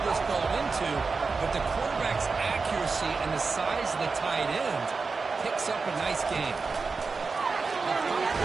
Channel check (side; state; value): left; quieter; 4.5 dB